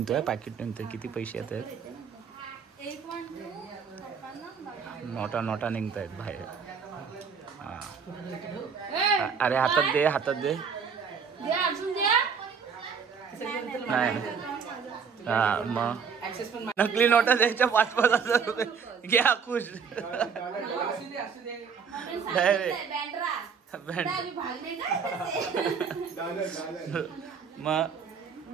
किती पैसे येत आहेत. नोटा निघत आहेत बाहेर. अरे हातात दे. नाही हा मग नकली नोटा द्यायच्या 5,000 रुपये घ्या खुश. मग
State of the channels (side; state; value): left; quieter; 6.2 dB